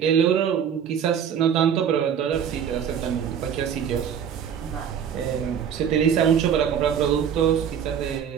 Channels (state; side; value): quieter; left; 8.2 dB